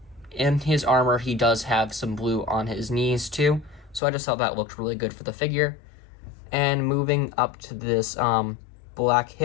in his armor he does have some blue on his knees too. So I just thought that looked really good for the figure. And moving up to this black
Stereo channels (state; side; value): drops out; right; at 4.0 s